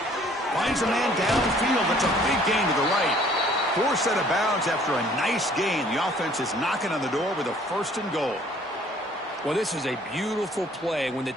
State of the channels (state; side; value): normal; both; correlation 0.57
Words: Finds a man downfield. That's a big gain to the right. Forced out of bounds after a nice gain. The offense is knocking on the door with a 1st and goal. Well, this is a beautiful play when the